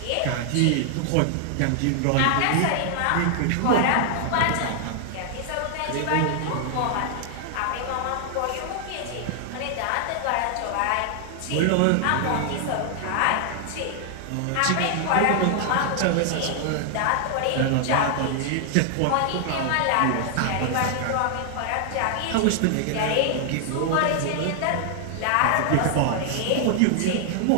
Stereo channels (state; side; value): different; both; correlation 0.00